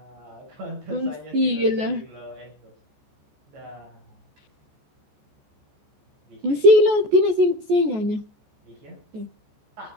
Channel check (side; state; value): left; late; 14 ms